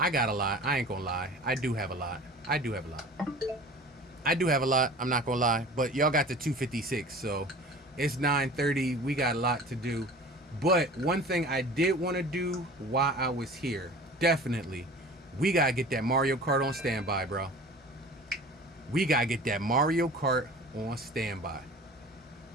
got a lot. I ain't gonna lie. I do have a lot. I do have a lot. I do have a lot. I'm not gonna lie. But y'all got the 256, so it's 9:30. We got a lot to do. But one thing I did want to do while I was here, definitely, we gotta get that Mario Kart on standby, bro. We gotta get that Mario Kart on standby.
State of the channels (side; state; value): both; normal; correlation 0.42